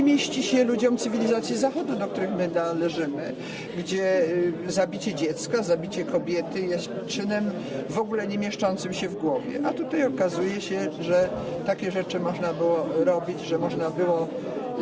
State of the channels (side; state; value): both; identical; correlation 1.00